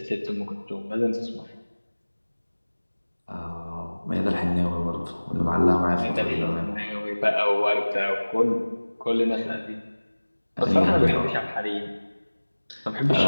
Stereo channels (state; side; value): inverted; both; correlation -1.00